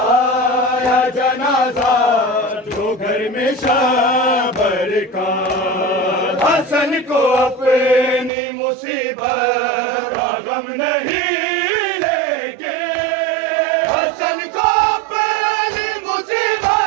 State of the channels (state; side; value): drops out; left; at 8.3 s